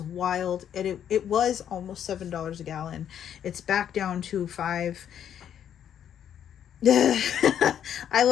wild. And it was almost $7 a gallon. It's back down to 5. I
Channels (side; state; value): right; quieter; 9.5 dB